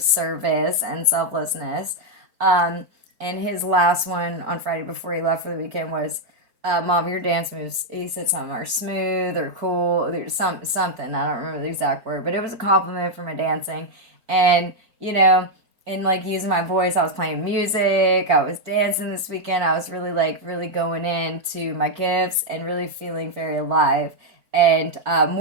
and selflessness. And his last one on Friday before he left for the weekend was, Mom, your dance moves, he said something, are smooth or cool, there's something, I don't remember the exact word, but it was a compliment for my dancing. And, you know, and like using my voice, I was playing music, I was dancing this weekend, I was really going into my gifts and really feeling very alive and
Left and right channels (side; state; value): left; late; 4.5 ms